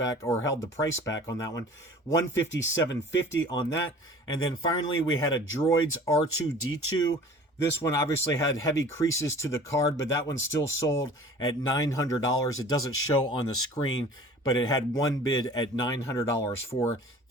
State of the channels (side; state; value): both; normal; correlation 0.45